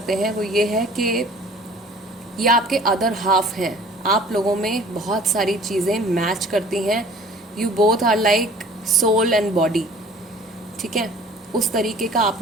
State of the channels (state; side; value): normal; both; correlation 0.50